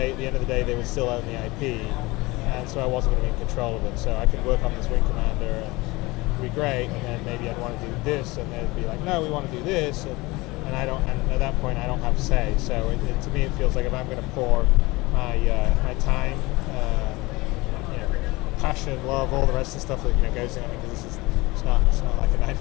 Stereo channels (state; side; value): quieter; right; 22.3 dB